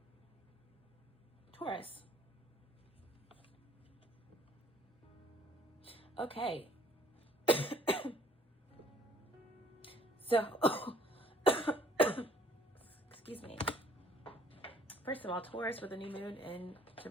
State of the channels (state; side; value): normal; both; correlation 0.59